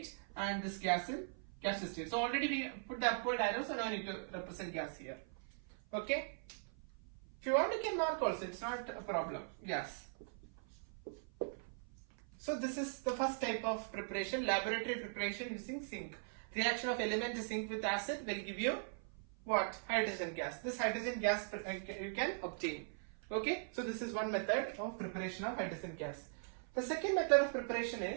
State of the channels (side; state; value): left; silent; 51 dB below the other